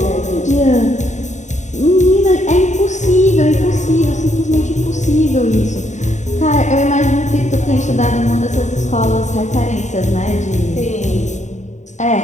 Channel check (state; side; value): late; right; 0.34 ms